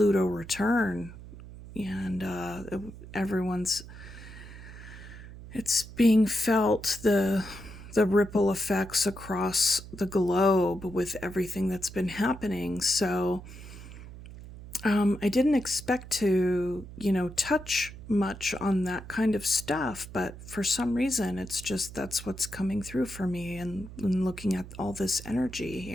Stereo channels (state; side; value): noise; right; hum, 15 dB below the sound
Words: return, and it's being felt, the ripple effects across the globe with everything that's been happening. So I didn't expect to, touch much on that kind of stuff, but for some reason, it's just, that's what's coming through for me, and looking at all this energy